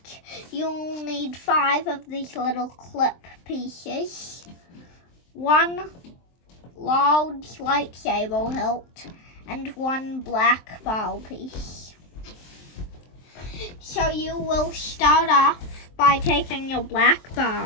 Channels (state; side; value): late; right; 23 ms